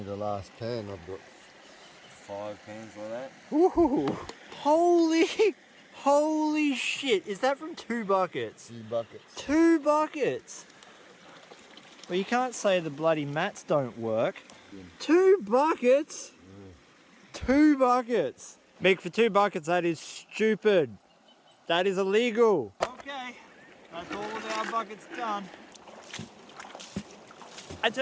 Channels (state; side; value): identical; both; correlation 1.00